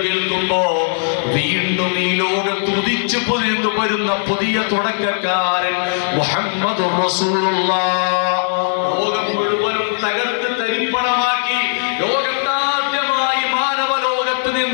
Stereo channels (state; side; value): silent; right; digital silence